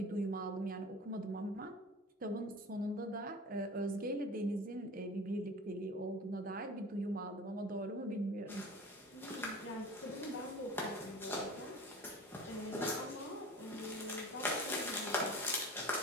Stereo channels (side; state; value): both; normal; correlation 0.37